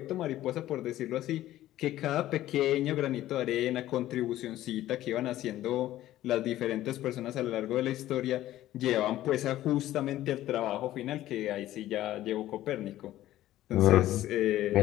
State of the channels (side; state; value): right; quieter; 14.2 dB